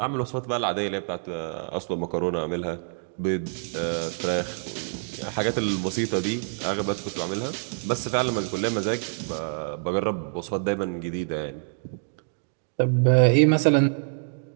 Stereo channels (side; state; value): left; silent; digital silence